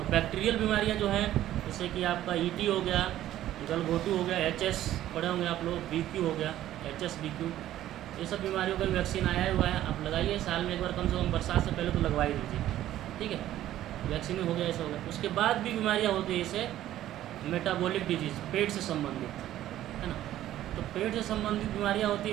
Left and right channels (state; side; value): quieter; left; 13.1 dB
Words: बैक्टीरियल बीमारियाँ जो हैं जैसे कि आपका ईटी हो गया, गलघोटू हो गया, एचएस पढ़े होंगे आप लोग, बीक्यू हो गया, एचएस बीक्यू, ये सब बीमारियों का वैक्सीन आया हुआ है। आप लगाइए साल में एक बार, कम से कम बरसात से पहले तो लगवा ही दीजिए, ठीक है। वैक्सीन हो गया, ऐसा हो गया। उसके बाद भी बीमारियाँ होती है, जैसे मेटाबॉलिक डिजीज़, पेट से संबंधित, है ना। तो पेट से संबंधित बीमारियाँ होती